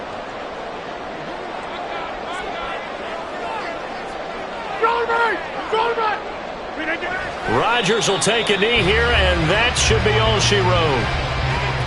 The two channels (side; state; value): both; identical; correlation 1.00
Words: Rodgers will take a knee here, and that should be all she wrote.